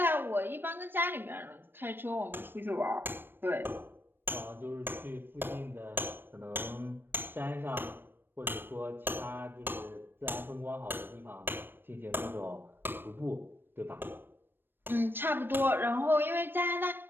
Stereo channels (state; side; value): late; left; 0.097 ms